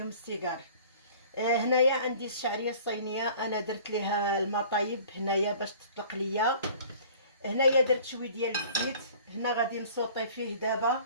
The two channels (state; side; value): inverted; both; correlation -0.48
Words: السيجار. هنايا عندي الشعريه الصينيه، انا درت ليها المطايب هنايا باش تطلق ليا. هنايا درت شويه ديال الزيت، هنا غادي نسوطي فيه دابا